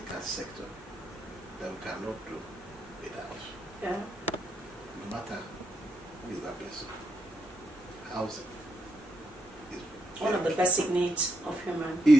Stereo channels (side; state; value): both; normal; correlation 0.80